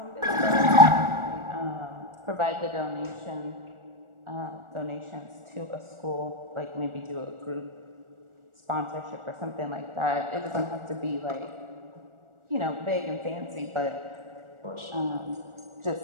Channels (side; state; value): left; late; 1.4 ms